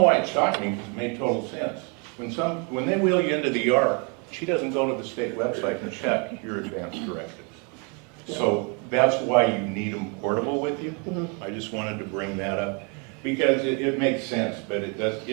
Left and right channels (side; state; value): left; quieter; 33.5 dB